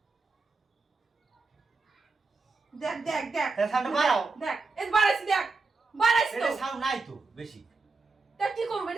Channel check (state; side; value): quieter; left; 3.9 dB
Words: দেখ দেখ দেখ সাউন্ড বাড়াও দেখ এই বাড়াইছি দেখ বাড়াইছি তো এটা সাউন্ড নাই তো বেশি তা কি করব